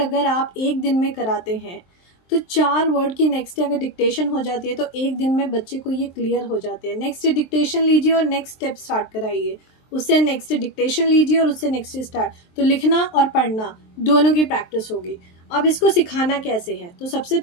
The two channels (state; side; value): late; right; 23 ms